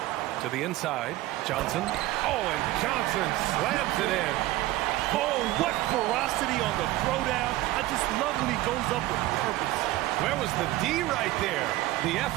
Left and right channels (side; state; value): left; quieter; 17.0 dB